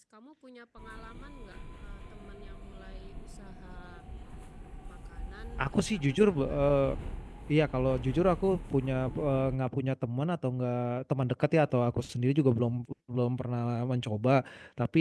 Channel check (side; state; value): both; identical; correlation 1.00